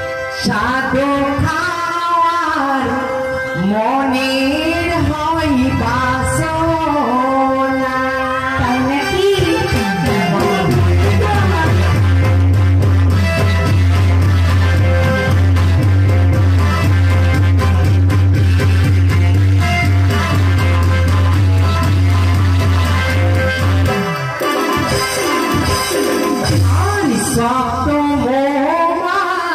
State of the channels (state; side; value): identical; both; correlation 1.00